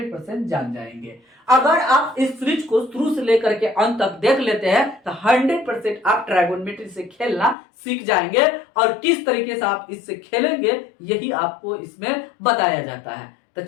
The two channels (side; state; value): right; drops out; at 7.6 s